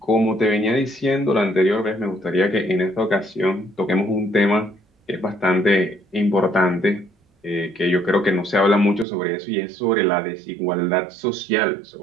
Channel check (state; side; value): drops out; left; at 9.1 s